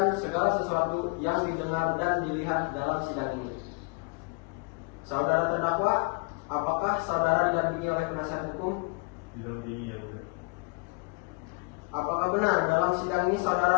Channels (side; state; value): right; quieter; 30.9 dB